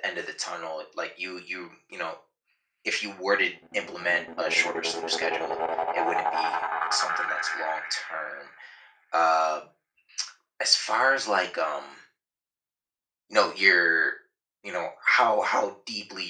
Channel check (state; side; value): identical; both; correlation 1.00